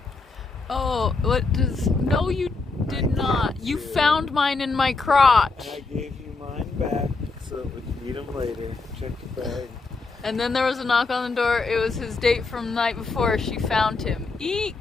Oh, what does? No, you did not. You found mine in my crotch. I gave you mine back so that we can eat them later. Check the bag. And then there was a knock on the door. It was his date from the night before. She found him.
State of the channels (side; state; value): right; quieter; 3.9 dB